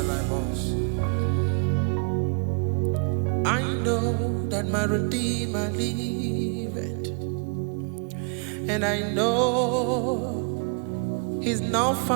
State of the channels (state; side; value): quieter; left; 38.7 dB